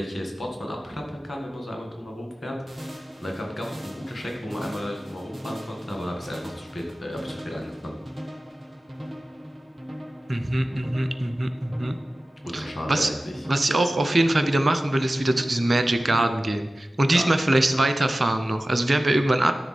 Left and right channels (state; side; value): normal; both; correlation 0.96